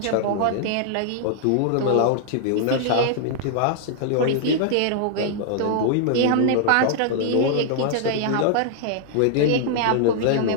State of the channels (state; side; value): different; both; correlation -0.01